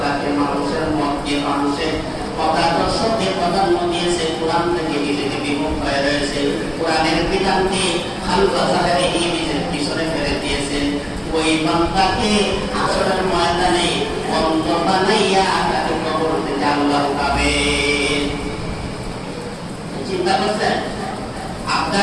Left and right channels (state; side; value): identical; both; correlation 1.00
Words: মানুষের মতকে, মানুষের মতাদর্শকে প্রাধান্য দিয়েছে, কোরআন থেকে নিজেকে বিমুখ হয়ে রয়েছে, কোরআনের বিধানকে খালফা জাহেরে নিজের পিছনে ফেলে দিয়েছে, ওই বান্দাকে আসরের ময়দানে অন্ধ বানাইয়া তাকে কবর থেকে আল্লাহ উঠাবে। চিন্তা করছেন